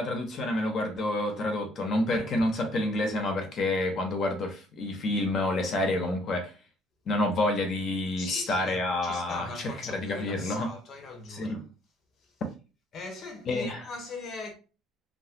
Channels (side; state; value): both; normal; correlation 0.64